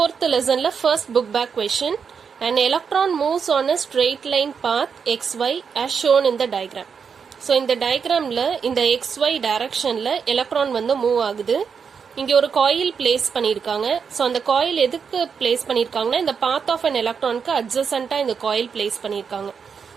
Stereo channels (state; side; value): quieter; left; 6.3 dB